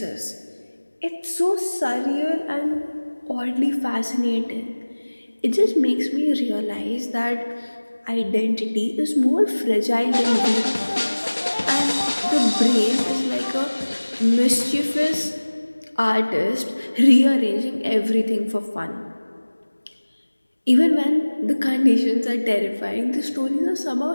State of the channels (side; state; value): both; inverted; correlation -1.00